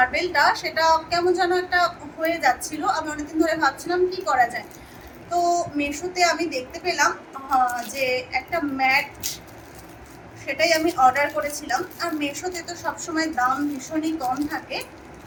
সেটা কেমন যেন একটা হয়ে যাচ্ছিল। আমি অনেকদিন ধরে ভাবছিলাম কি করা যায়। তো মিশোতে আমি দেখতে পেলাম যে একটা ম্যাট, সেটাই আমি অর্ডার করেছিলাম। আর মিশোতে তো সবসময় দাম ভীষণই কম থাকে,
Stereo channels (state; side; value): identical; both; correlation 1.00